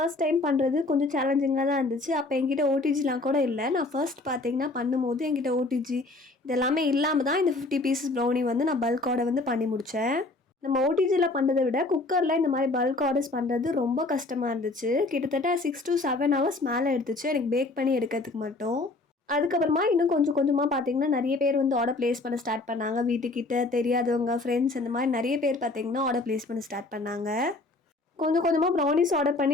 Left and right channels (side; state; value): right; quieter; 3.1 dB